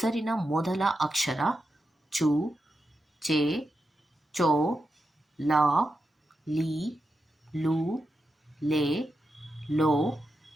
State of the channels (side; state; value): both; normal; correlation 0.88